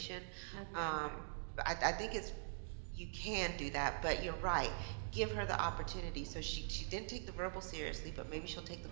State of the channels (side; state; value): left; silent; digital silence